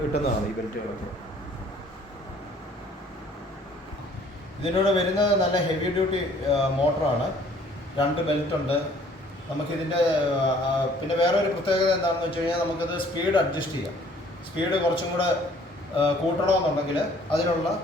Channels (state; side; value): normal; both; correlation 0.57